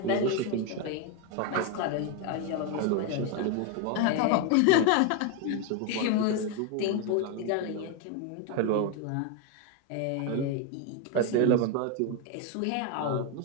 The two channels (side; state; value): both; different; correlation 0.02